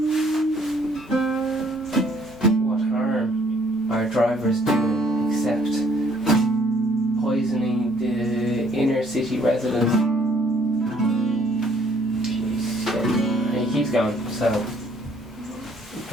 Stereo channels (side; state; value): both; normal; correlation 0.63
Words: What harm are drivers doing except poisoning the inner city residents? Jeez, yeah. He keeps going, so